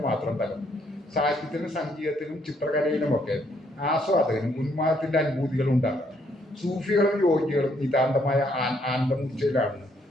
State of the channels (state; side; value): normal; both; correlation 0.70